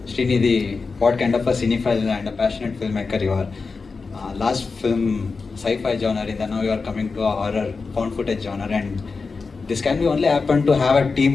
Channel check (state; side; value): quieter; right; 4.5 dB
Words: Srinidhi, what kind of a cinephile and a passionate filmmaker you are. Last film, sci-fi genre, and now you are coming to a horror, found footage genre, and this can be only happen to have a team